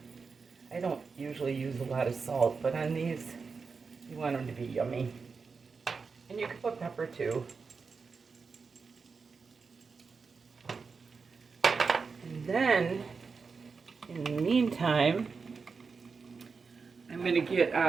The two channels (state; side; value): quieter; left; 5.0 dB